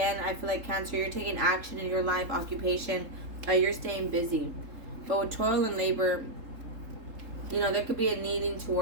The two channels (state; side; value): late; left; 3.7 ms